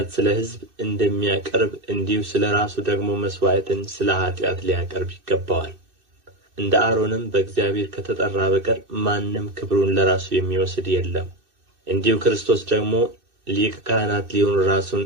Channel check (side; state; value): left; late; 2.6 ms